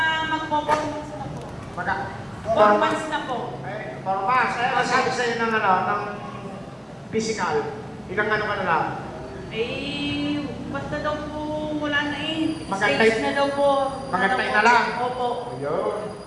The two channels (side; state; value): both; identical; correlation 1.00